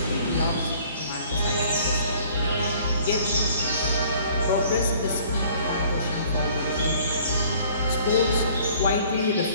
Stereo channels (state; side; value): inverted; both; correlation -0.55